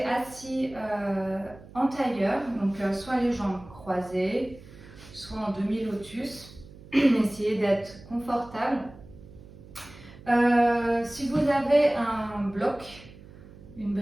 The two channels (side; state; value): right; noise; hum, 19 dB below the sound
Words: assis en tailleur, donc soit les jambes croisées, soit en demi-lotus. Essayez d'être confortable. Si vous avez un bloc, une